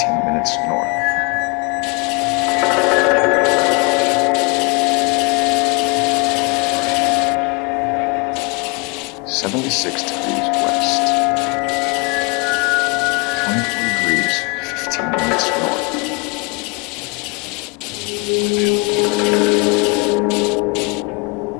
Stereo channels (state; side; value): quieter; right; 30.1 dB